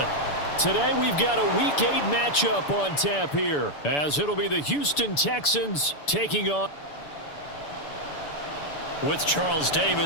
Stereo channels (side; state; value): right; late; 6.9 ms